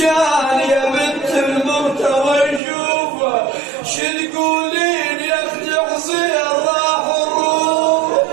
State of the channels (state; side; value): drops out; left; at 2.6 s